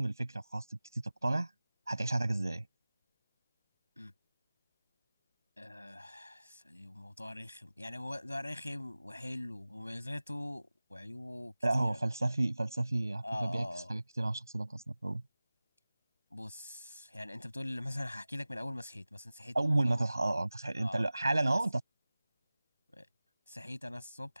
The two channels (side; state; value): both; inverted; correlation -0.98